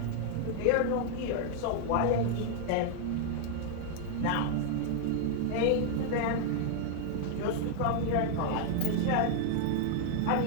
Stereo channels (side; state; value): both; different; correlation 0.00